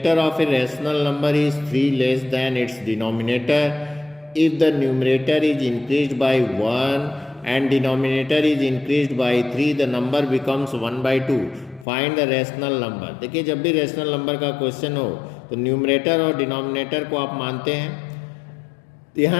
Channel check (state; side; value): drops out; right; at 11.9 s